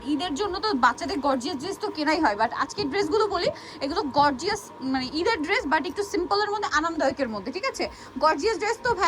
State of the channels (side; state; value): both; identical; correlation 1.00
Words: ঈদের জন্য তো বাচ্চাদের গর্জিয়াস ড্রেস তো কেনাই হয়, বাট আজকের ড্রেসগুলো বলি এগুলো গর্জিয়াস, মানে ঈদের ড্রেস বাট একটু সিম্পলের মধ্যে, আরামদায়কের মধ্যে। ঠিক আছে, গর্জিয়াস ড্রেস তো